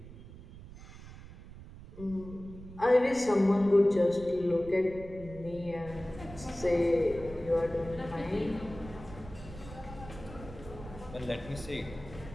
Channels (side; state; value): right; noise; rumble, 15 dB below the sound